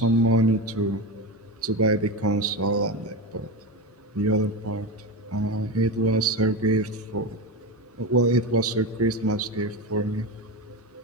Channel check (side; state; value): both; normal; correlation 0.19